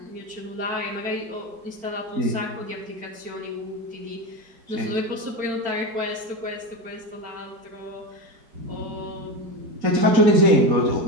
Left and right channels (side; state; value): left; late; 4.4 ms